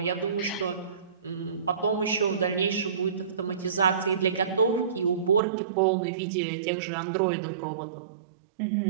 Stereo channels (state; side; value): drops out; left; at 5.4 s